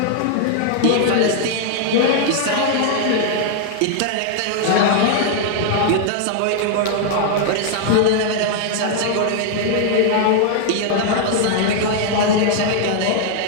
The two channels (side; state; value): both; different; correlation 0.00